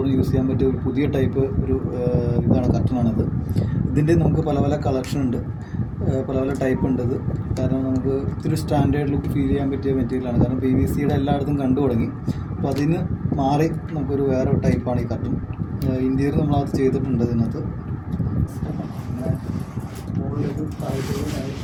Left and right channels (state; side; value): identical; both; correlation 1.00